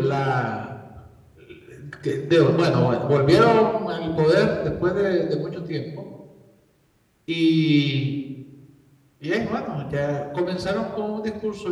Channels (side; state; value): both; identical; correlation 1.00